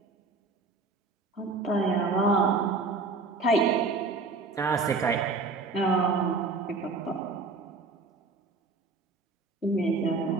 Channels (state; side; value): quieter; left; 3.8 dB